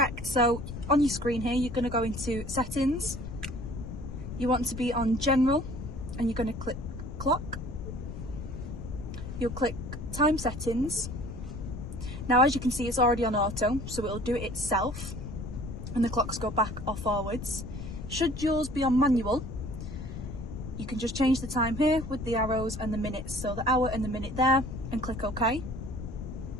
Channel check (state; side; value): noise; left; rumble, 8 dB below the sound